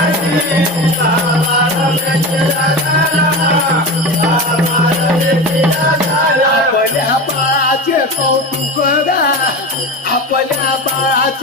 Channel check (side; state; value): both; normal; correlation 0.26